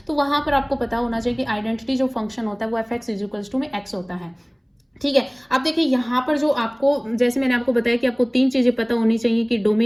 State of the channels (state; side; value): identical; both; correlation 1.00